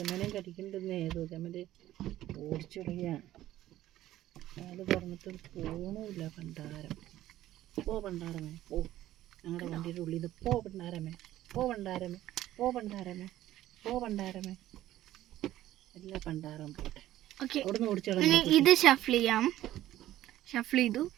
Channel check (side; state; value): left; quieter; 14.1 dB